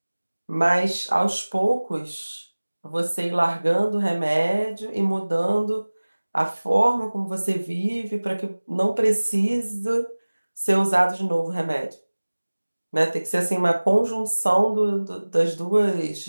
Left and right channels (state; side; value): inverted; both; correlation -1.00